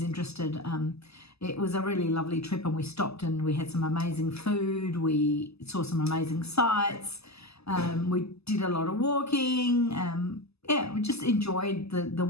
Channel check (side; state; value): right; late; 0.79 ms